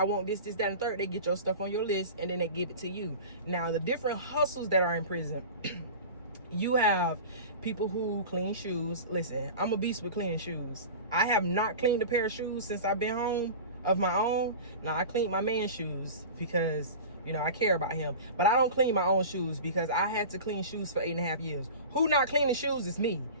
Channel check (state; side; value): inverted; both; correlation -0.34